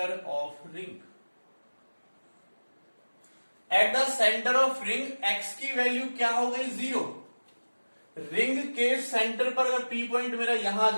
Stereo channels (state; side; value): inverted; both; correlation -1.00